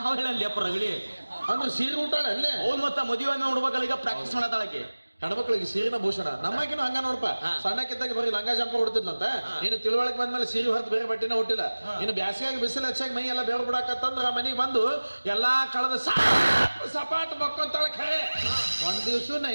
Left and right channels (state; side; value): inverted; both; correlation -1.00